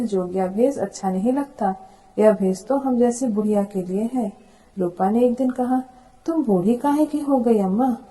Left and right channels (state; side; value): identical; both; correlation 1.00